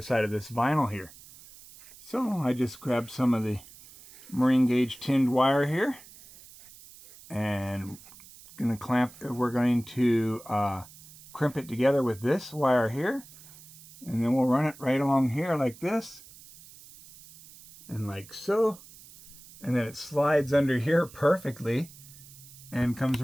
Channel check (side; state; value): right; noise; hiss, 20 dB below the sound